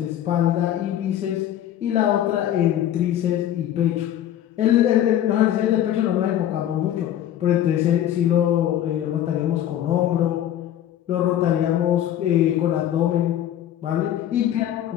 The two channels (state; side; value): quieter; right; 11.4 dB